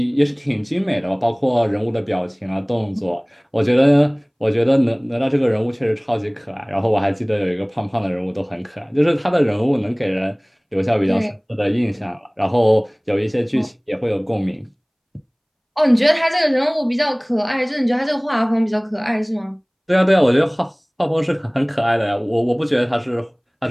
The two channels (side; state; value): both; identical; correlation 1.00